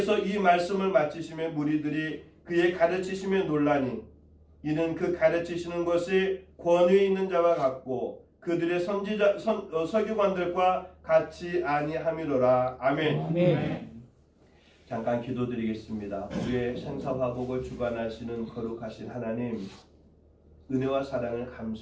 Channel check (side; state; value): both; identical; correlation 1.00